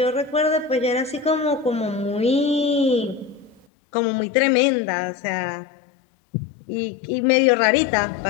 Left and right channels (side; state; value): right; drops out; at 3.7 s